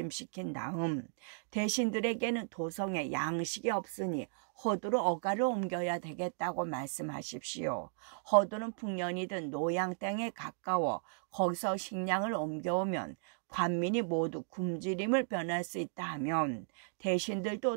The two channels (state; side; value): silent; left; digital silence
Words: 다음 대신들에게는 도성에 양식이 없으니 허도로 어가를 옮겨야 되겠다고 말씀하십시오. 허도는 풍년이든 노양 땅에 가까워 거기서 식량을 옮겨오면 관민이 모두 굶주림을 변할 수 있다 하면